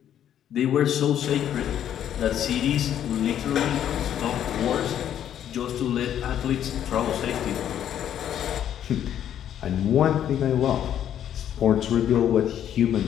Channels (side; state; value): right; quieter; 10.2 dB